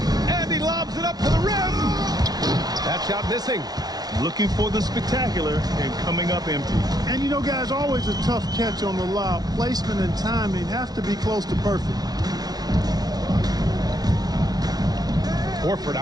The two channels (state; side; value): late; left; 0.19 ms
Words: And he lobs it up to the rim. That shot missing. Looking for the spectacular and coming up empty. And you know, guys, always a tough catch on the lob. Placement and timing have to be close to perfect. Horford